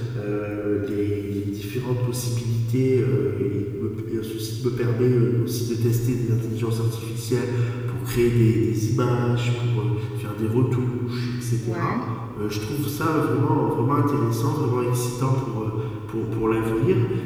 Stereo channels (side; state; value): both; identical; correlation 1.00